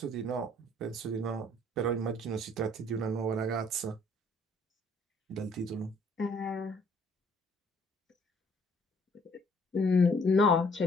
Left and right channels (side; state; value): both; normal; correlation 0.61